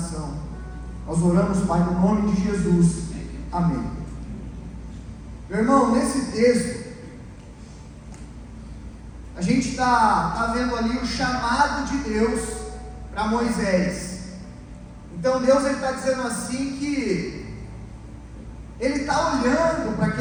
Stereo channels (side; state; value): both; identical; correlation 1.00